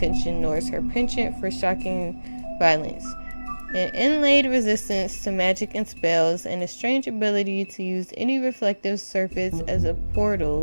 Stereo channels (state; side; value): inverted; both; correlation -1.00